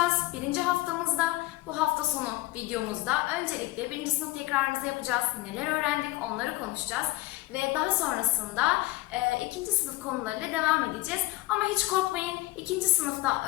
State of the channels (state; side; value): quieter; right; 19.2 dB